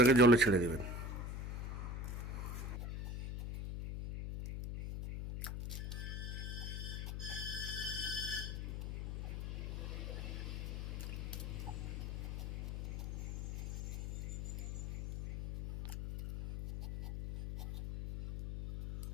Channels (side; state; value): left; noise; hum, 4 dB below the sound